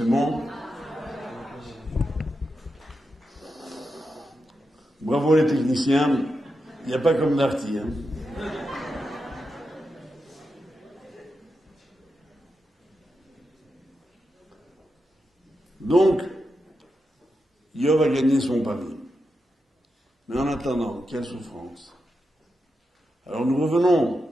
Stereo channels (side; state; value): both; normal; correlation 0.87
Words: bon. Bravo les techniciens. Il n'y a pas comme Darty. Hein. Donc, Yov a gagné son pari. Mais en attendant, quelle souffrance. Alors nous revenons